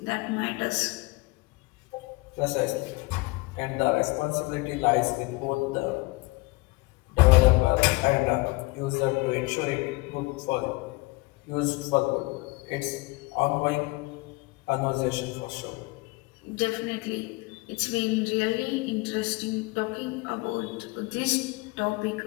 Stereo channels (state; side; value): quieter; right; 24.5 dB